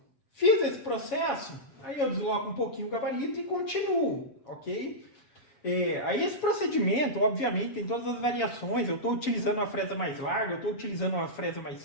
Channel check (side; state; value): right; late; 7.2 ms